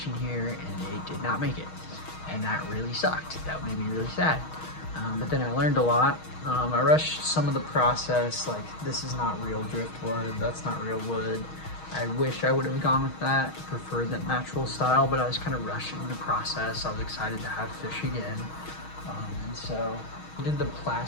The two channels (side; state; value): right; late; 6.3 ms